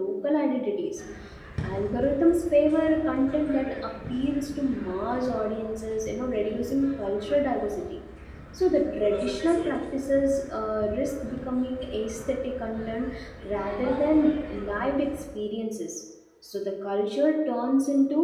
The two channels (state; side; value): identical; both; correlation 1.00